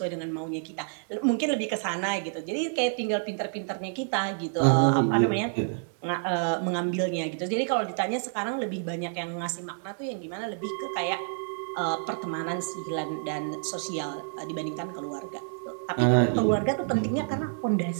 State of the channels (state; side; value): silent; left; 59 dB below the other